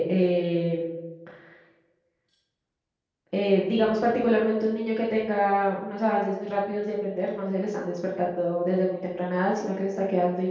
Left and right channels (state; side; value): identical; both; correlation 1.00